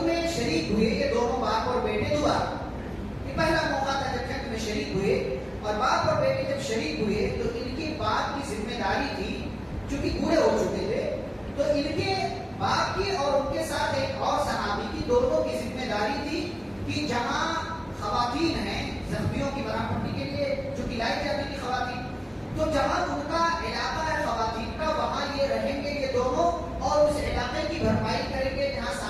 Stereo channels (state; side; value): identical; both; correlation 1.00